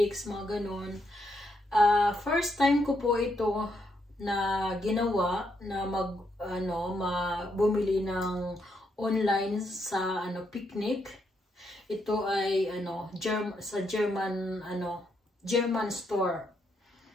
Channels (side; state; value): both; normal; correlation 0.78